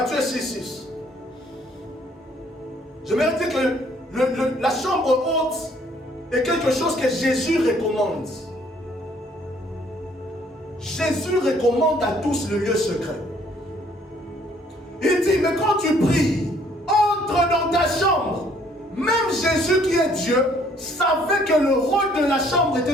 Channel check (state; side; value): normal; both; correlation 0.62